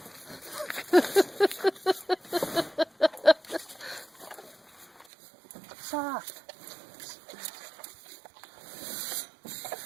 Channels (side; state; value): left; drops out; at 5.1 s